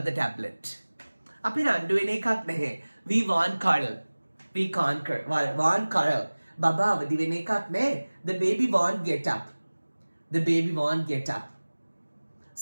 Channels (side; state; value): both; inverted; correlation -1.00